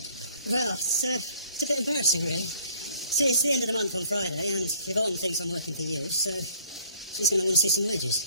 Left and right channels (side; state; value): both; inverted; correlation -0.57